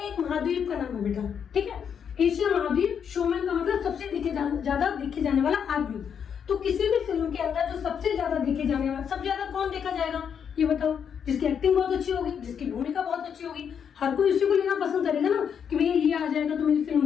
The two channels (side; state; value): right; quieter; 7.6 dB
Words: एक महाद्वीप का नाम है बेटा, ठीक है। एशिया महाद्वीप, शोमैन का मतलब सबसे ज्यादा देखे जाने वाला आदमी। तो किसी भी फिल्म के अंदर जो सबसे ज्यादा देखे जाने वाला, सबसे ज्यादा कौन देखा जाएगा, ये बताओ, जिसकी एक्टिंग बहुत अच्छी होगी, जिसकी भूमिका बहुत अच्छी होगी, हर कोई उसी को लेना पसंद करेगा ना कि भैया ये आ जाएगा तो मेरी फिल्म